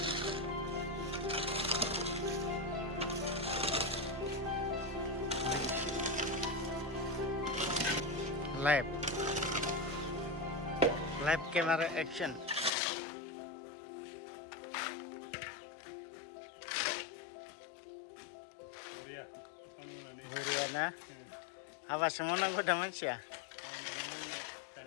Live camera action. Buria na. Apa semua nak guna macam?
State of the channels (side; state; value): right; drops out; at 12.7 s